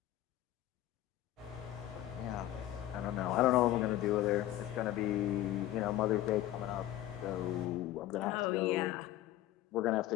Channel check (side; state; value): right; quieter; 14.1 dB